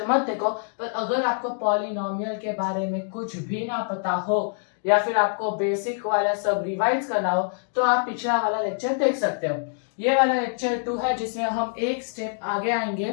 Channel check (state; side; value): silent; right; digital silence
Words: मत देखो। पर अगर आपको पॉलिनोमियल के बारे में कुछ भी ना पता हो या फिर आपको बेसिक वाला सब रिवाइज करना हो तो आप पिछला वाला लेक्चर देख सकते हो। ये वाला लेक्चर 2 है जिसमें हम एक स्टेप आगे आएंगे